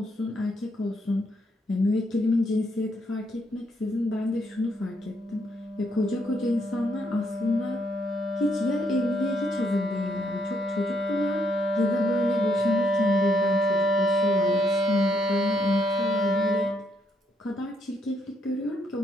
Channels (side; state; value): both; normal; correlation 0.74